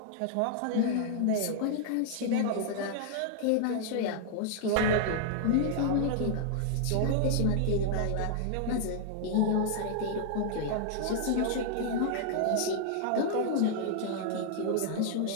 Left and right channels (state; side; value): different; both; correlation -0.01